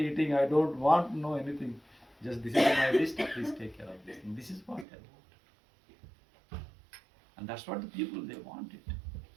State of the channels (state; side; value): drops out; left; at 4.9 s